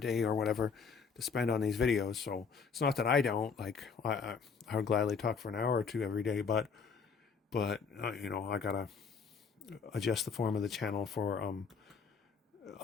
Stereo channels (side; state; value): right; quieter; 5.7 dB